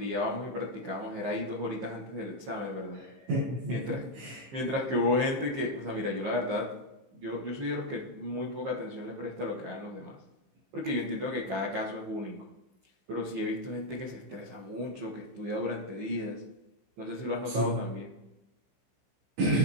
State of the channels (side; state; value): left; late; 15 ms